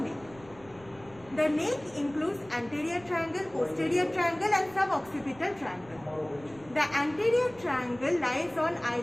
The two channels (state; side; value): noise; right; rumble, 24 dB below the sound